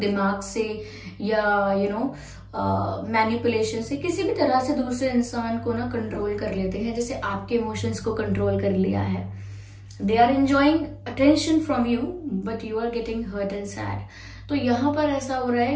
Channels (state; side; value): identical; both; correlation 1.00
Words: से, या मैनिपुलेशन से, किसी भी तरह से दूसरे इंसान को ना कंट्रोल कर लेते हैं, जैसे आपके इमोशंस को कंट्रोल कर लिया है। They are enjoying attention from you but you are getting hurt and sad. तो यहाँ पर ऐसा हो रहा है